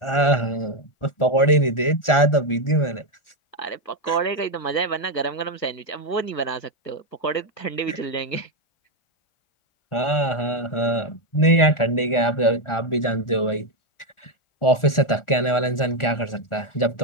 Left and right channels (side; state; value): right; late; 1.4 ms